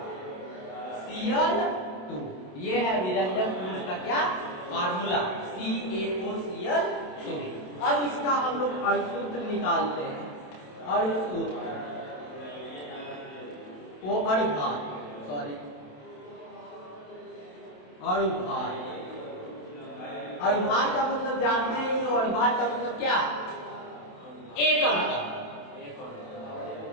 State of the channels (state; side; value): late; right; 27 ms